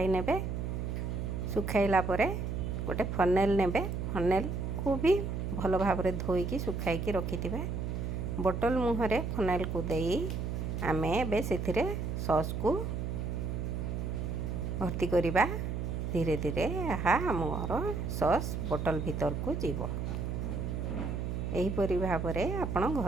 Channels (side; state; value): right; noise; hum, 2 dB below the sound